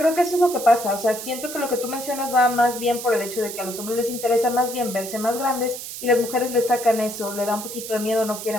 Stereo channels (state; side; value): noise; right; hiss, 9 dB below the sound